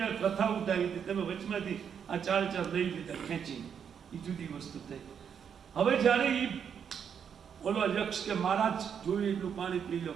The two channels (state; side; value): quieter; left; 7.6 dB